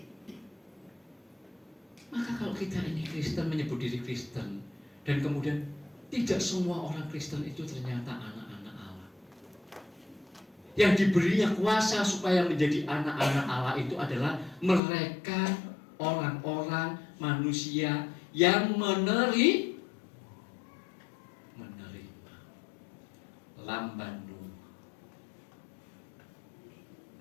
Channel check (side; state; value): right; drops out; at 14.8 s